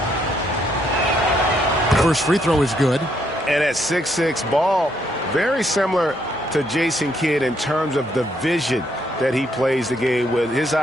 First free throw is good. And at 6'6", Ball, very similar to Jason Kidd in terms of the vision that he plays the game with. His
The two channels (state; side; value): normal; both; correlation 0.73